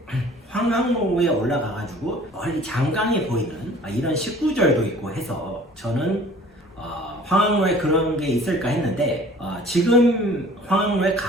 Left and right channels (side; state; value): both; normal; correlation 0.49